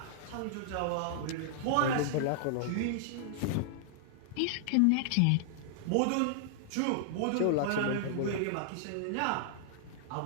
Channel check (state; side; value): different; both; correlation -0.01